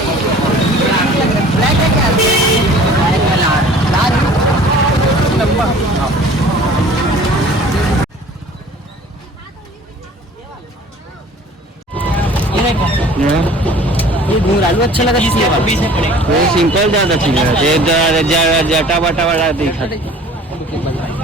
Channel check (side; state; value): both; normal; correlation 0.48